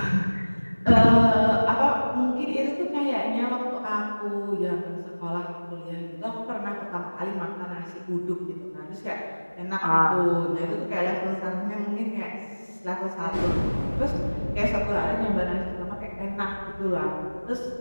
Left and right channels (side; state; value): both; inverted; correlation -1.00